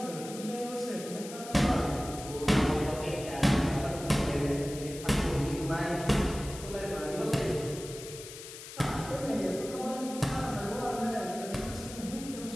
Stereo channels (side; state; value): left; noise; hiss, 13 dB below the sound